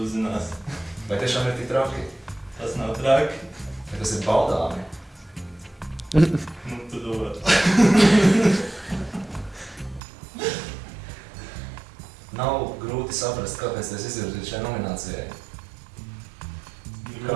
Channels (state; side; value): drops out; left; at 10.0 s